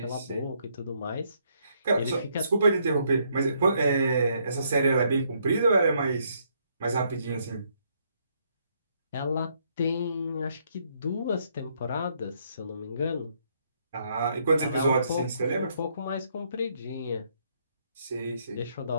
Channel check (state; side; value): inverted; both; correlation -0.72